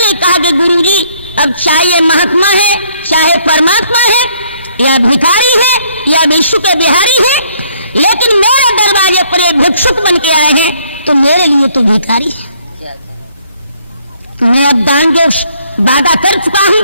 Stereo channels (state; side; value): inverted; both; correlation -0.65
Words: कहा कि गुरुजी, अब चाहे महात्मा है, चाहे परमात्मा है, या भिखारी है, या विश्व के बिहारी है, लेकिन मेरे दरवाजे पर एक भिक्षुक बन के आए हैं, तो मेरे लिए तो भिखारी है। मैं अब दान जो वादा कर चुका हूं